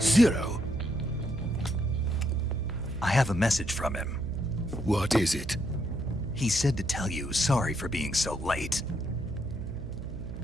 I have a message from him. What is it? He said to tell you sorry for being so late.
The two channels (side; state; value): right; noise; hum, 9 dB below the sound